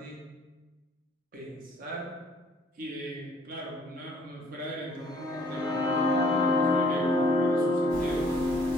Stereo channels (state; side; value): normal; both; correlation 0.60